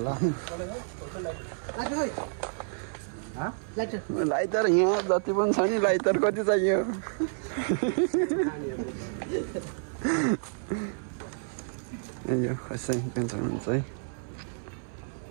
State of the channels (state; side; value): silent; left; 58 dB below the other